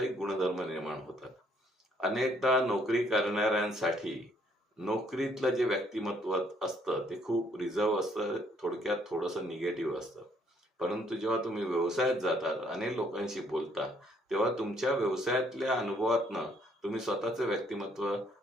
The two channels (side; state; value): both; normal; correlation 0.66